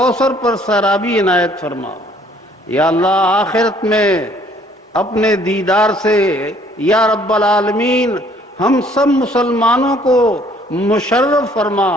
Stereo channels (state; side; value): normal; both; correlation 0.60